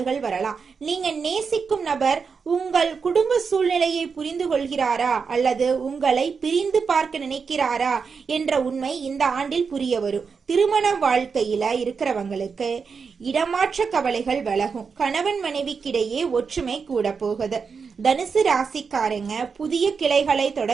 வரலாம். நீங்க நேசிக்கும் நபர் உங்கள் குடும்ப சூழ்நிலையை புரிந்து கொள்கிறாரா அல்லது உங்களை பிரிந்து பார்க்க நினைக்கிறாரா என்ற உண்மை இந்த ஆண்டில் புரிய வரும். திருமண வாழ்க்கையில இருக்கிறவங்களுக்கு இடமாற்ற கவலைகள் விலகும். கணவன் மனைவிக்கிடையே ஒற்றுமை கூட போகுது. தனுசு ராசிக்காரங்க புதிய கிளைகளை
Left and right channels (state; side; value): quieter; left; 5.5 dB